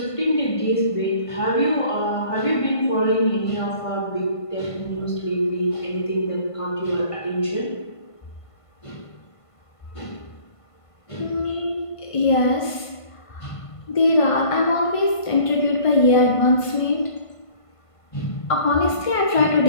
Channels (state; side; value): late; right; 1.5 ms